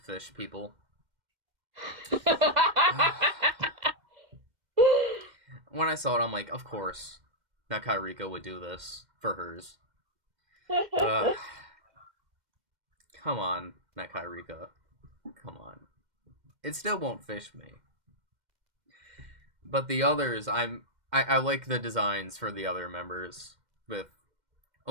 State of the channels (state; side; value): late; left; 2.1 ms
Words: people. When I saw it, I'm like, of course, Nakai Rika would do this for hers. Come on, Nakai Rika. Come on. It still won't fish me. But the others, I like the designs for the other members. With